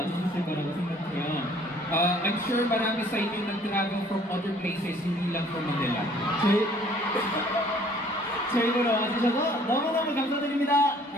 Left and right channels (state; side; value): normal; both; correlation 0.57